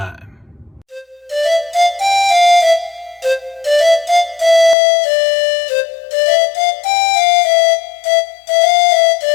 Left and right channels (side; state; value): right; drops out; at 4.8 s